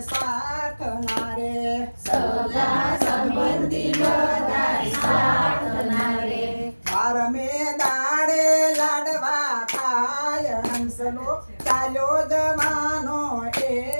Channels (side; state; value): both; inverted; correlation -1.00